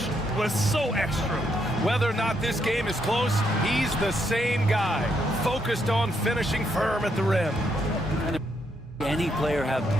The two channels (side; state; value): both; normal; correlation 0.77